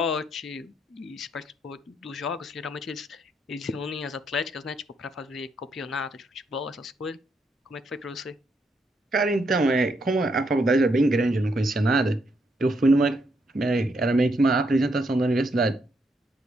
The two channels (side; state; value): both; normal; correlation 0.77